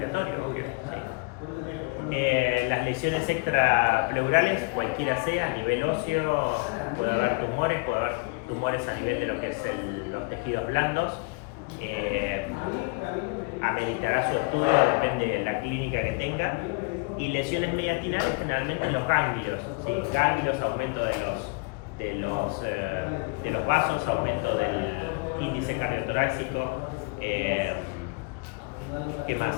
obvio, ¿sí? Las lesiones extrapleurales, cualquiera sea, a nivel óseo, puede haber tumores a nivel de lo que es los tejidos blandos. Ameritará su estudio, depende de la clínica que tenga. Y lesiones mediastinales generalmente en los ganglios, ¿sí? Ganglios, aumento de los vasos, aumento del índice cardiotorácico. ¿Qué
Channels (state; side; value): quieter; right; 28.8 dB